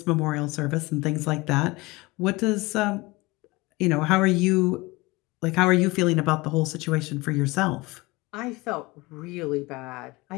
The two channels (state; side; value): quieter; right; 22.6 dB